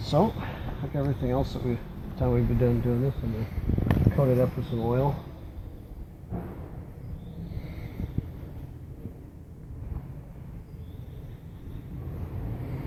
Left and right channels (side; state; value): both; identical; correlation 1.00